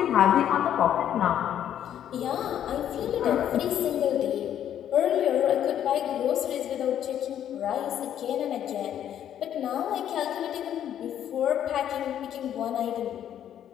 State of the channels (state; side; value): quieter; right; 10.3 dB